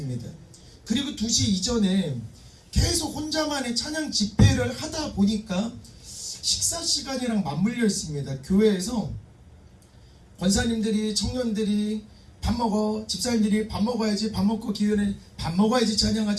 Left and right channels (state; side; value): identical; both; correlation 1.00